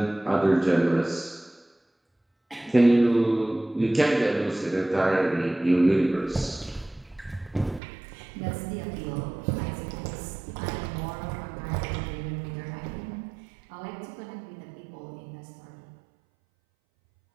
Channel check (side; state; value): left; drops out; at 7.8 s